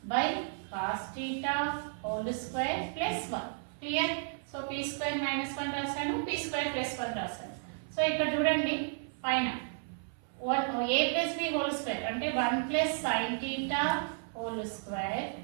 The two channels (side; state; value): left; silent; 56 dB below the other